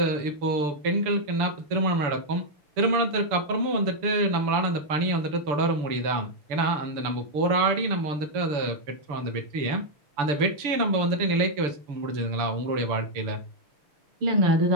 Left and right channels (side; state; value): left; late; 6.8 ms